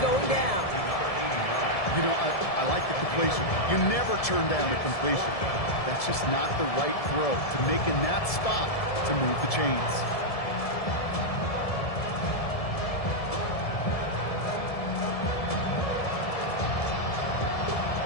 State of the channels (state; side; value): late; right; 1.7 ms